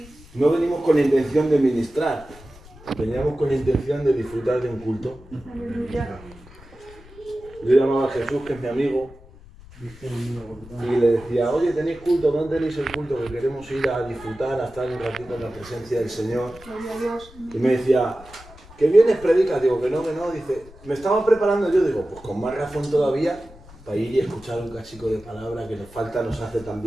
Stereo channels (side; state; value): left; noise; rumble, 21 dB below the sound